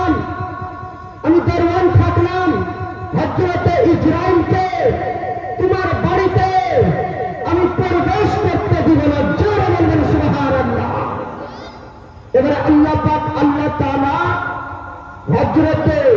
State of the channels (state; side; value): identical; both; correlation 1.00